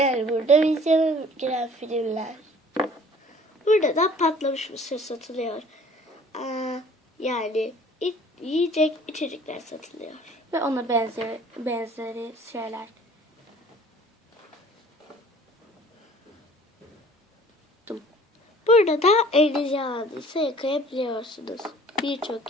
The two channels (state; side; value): normal; both; correlation 0.51